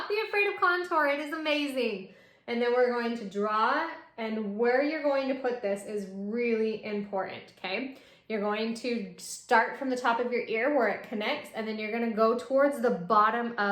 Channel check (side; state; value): both; identical; correlation 1.00